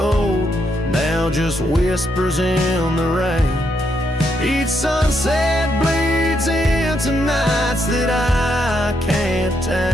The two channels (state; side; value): normal; both; correlation 0.78